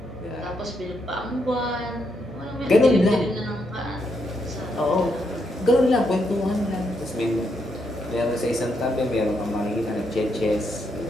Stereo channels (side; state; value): both; normal; correlation 0.78